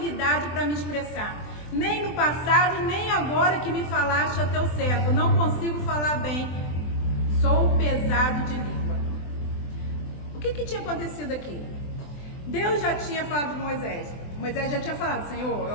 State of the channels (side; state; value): right; late; 24 ms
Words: para me expressar. Nem no passado, nem agora que me falaste a teu servo. Não consigo falar bem. Sou pesado de língua. O que tinha acontecido aqui? Deus já tinha falado com Moisés. Moisés já tinha falado: Senhor,